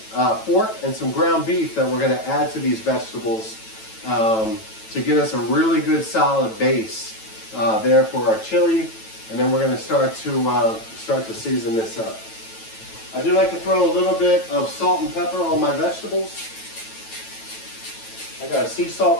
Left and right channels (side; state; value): right; late; 9.1 ms